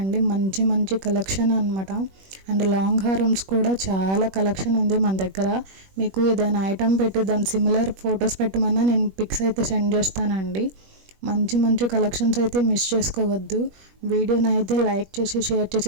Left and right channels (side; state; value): left; late; 21 ms